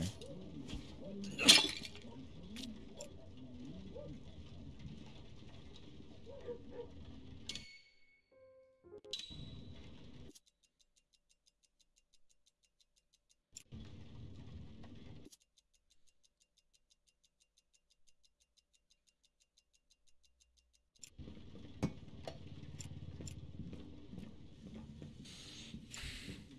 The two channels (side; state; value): both; identical; correlation 1.00